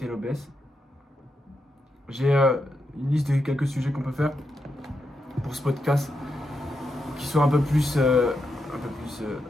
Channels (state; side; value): normal; both; correlation 0.85